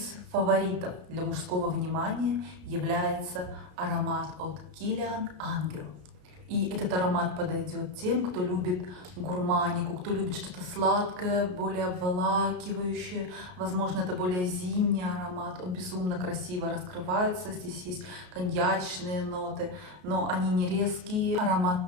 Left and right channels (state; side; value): late; left; 33 ms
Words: фаворитов для мужского внимания является аромат от Kilian Angel. И этот аромат подойдет тем, кто любит гурманику, кто любит что-то сладкое, более обволакивающее. Возможно, это более зимний аромат. Он безумно красиво раскрывается. Здесь есть коньячные ноты, но они не резкие.